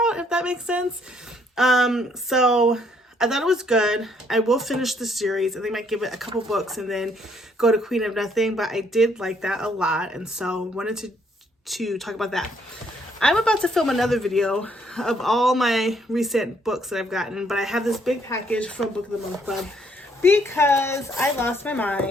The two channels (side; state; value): both; normal; correlation 0.68